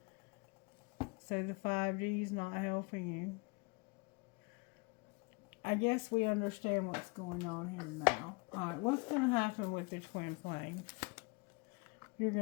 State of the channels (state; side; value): quieter; right; 29.2 dB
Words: So the 5D is not helping you. I guess we understand what's going on here now. Alright, what's going to happen with the twin flame? You're